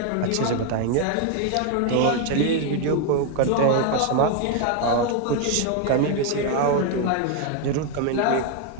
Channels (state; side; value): different; both; correlation 0.01